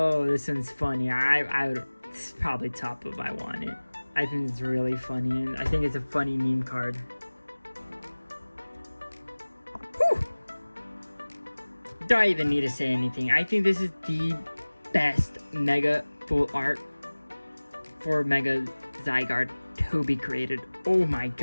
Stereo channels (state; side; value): inverted; both; correlation -1.00